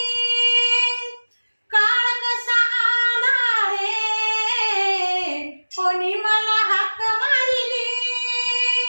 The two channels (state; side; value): inverted; both; correlation -1.00